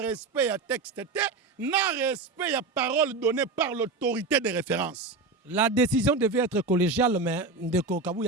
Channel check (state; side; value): quieter; left; 3.8 dB